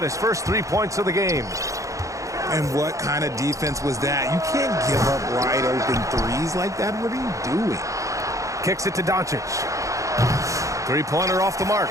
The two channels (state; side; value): late; left; 0.15 ms